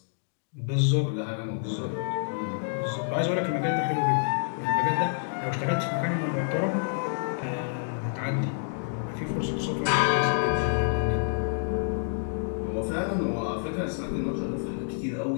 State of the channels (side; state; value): right; silent; digital silence